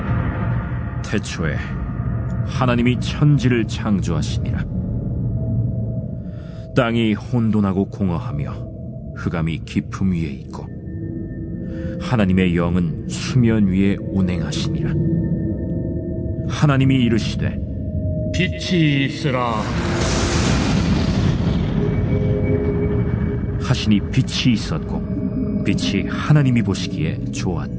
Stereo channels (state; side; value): identical; both; correlation 1.00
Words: 태초에 하나님이 천지를 창조하시니라. 땅이 혼돈하고 공허하며 흑암이 깊음 위에 있고 하나님의 영은 수면 위에 운행하시니라. 하나님이 이르시되 빛이 있으라. 하시니 빛이 있었고 빛이 하나님이 보시기에